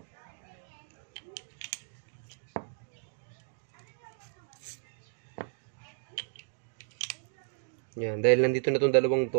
Yan, dahil nandito na itong dalawang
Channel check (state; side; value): silent; left; 55 dB below the other